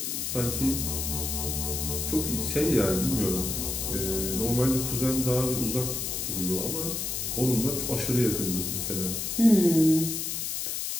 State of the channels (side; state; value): left; noise; hiss, 2 dB below the sound